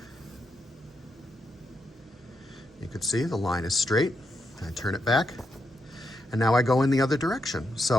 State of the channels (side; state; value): both; normal; correlation 0.83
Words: You can see the line is straight. I turn it back, and now I go in the other direction.